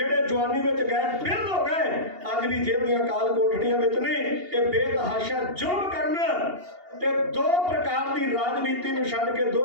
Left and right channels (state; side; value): late; left; 2.8 ms